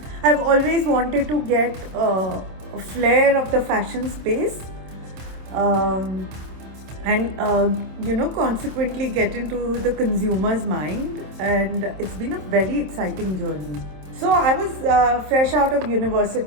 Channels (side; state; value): left; late; 27 ms